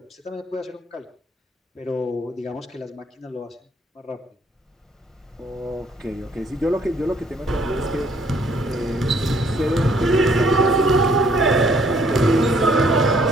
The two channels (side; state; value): both; normal; correlation 0.64